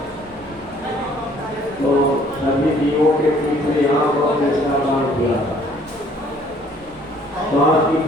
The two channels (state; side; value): normal; both; correlation 0.59